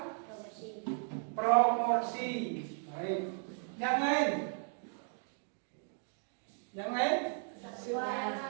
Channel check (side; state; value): left; silent; 54 dB below the other